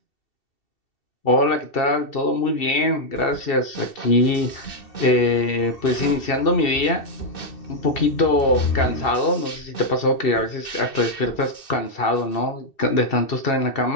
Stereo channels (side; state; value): right; late; 2.7 ms